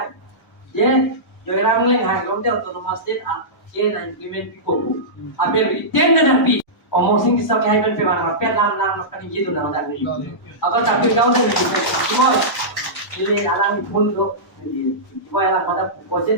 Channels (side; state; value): both; normal; correlation -0.16